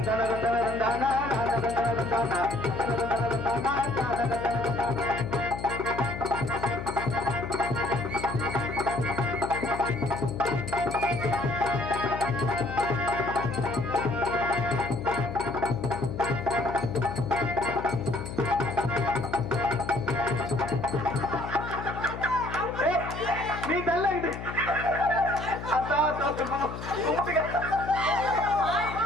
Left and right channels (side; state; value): left; noise; hum, 9 dB below the sound